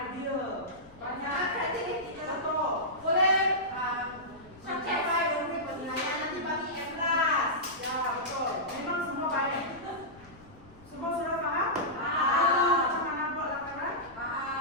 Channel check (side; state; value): left; noise; rumble, 23 dB below the sound